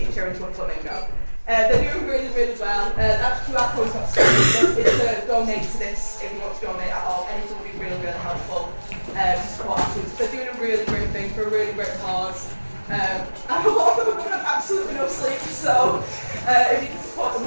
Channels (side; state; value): both; inverted; correlation -1.00